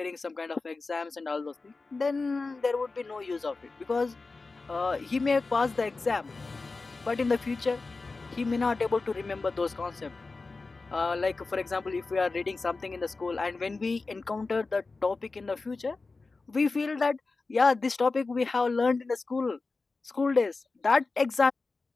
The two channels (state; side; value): quieter; right; 3.8 dB